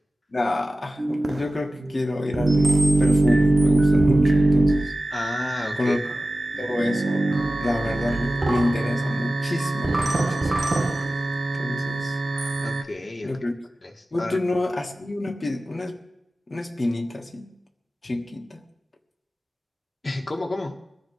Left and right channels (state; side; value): normal; both; correlation 0.95